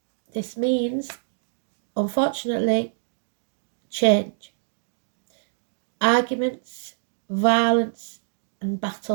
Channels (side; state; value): left; silent; digital silence